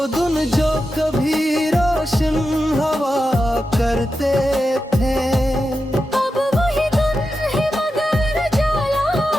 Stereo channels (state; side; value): normal; both; correlation 0.90